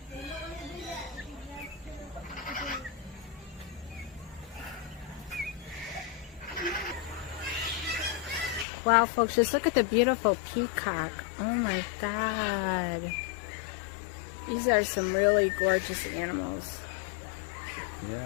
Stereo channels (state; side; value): drops out; right; at 8.7 s